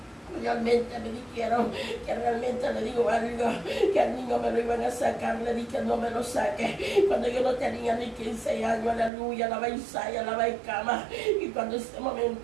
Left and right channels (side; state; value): left; drops out; at 9.1 s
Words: realmente me dijeron que realmente le digo algo, que al niño me lo iban a sacar, le dije no me lo saque, cuando yo no tenía ni 15 años, aleluya, la baisaya, la baicama, y cuando en ese